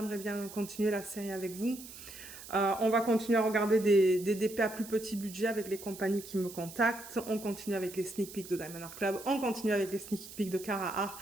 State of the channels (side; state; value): right; noise; hiss, 15 dB below the sound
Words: bien continuer la série avec vous. On va continuer à regarder des DP à plus petit budget avec les compagnies qui me contactent. On continue avec les sneak peeks de Diamond Art Club. On continue avec les sneak peeks de Cara Art.